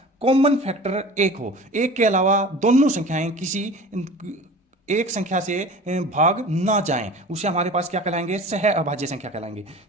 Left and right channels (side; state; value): both; normal; correlation 0.39